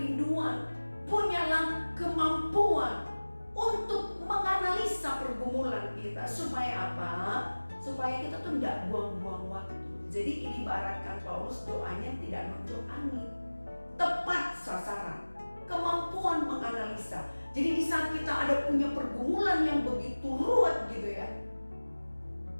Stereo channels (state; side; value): inverted; both; correlation -1.00